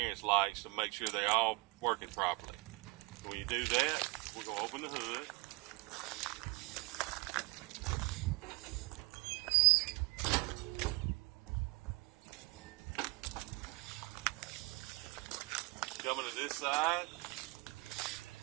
lights, to make sure they're all working properly. When you do that, we're going to open the hood. Coming to this side,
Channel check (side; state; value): left; quieter; 25.7 dB